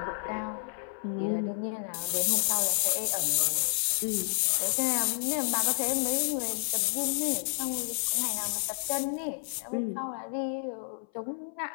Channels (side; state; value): right; silent; 58 dB below the other